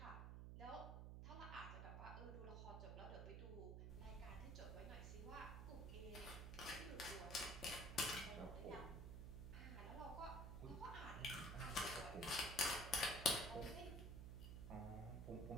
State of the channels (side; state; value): right; noise; hum, 5 dB below the sound